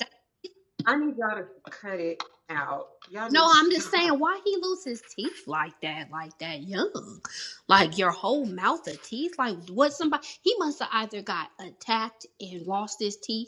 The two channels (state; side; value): identical; both; correlation 1.00